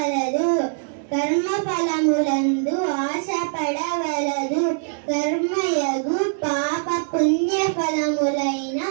కర్మ ఫలములందు ఆశపడవలదు. కర్మయగు పాప పుణ్య ఫలములైన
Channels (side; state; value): left; silent; 64 dB below the other